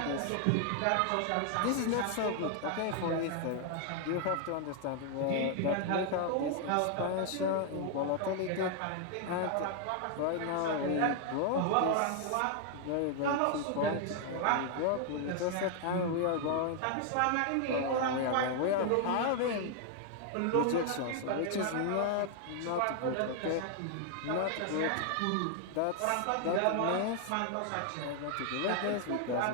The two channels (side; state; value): both; different; correlation 0.00